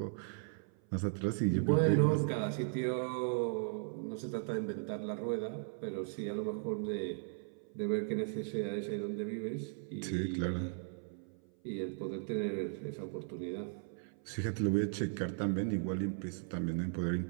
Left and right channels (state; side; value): silent; left; 53 dB below the other